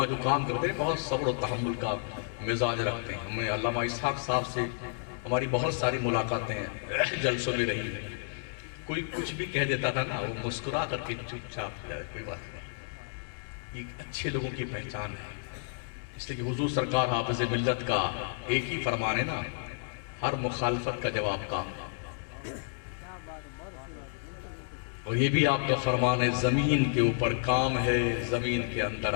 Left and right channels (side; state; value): right; silent; digital silence